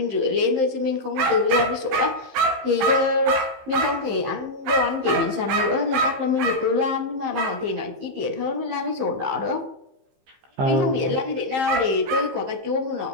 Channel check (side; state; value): left; late; 15 ms